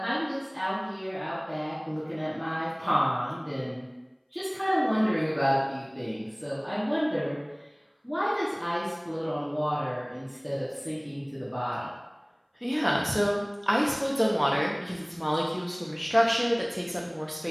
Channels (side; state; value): both; identical; correlation 1.00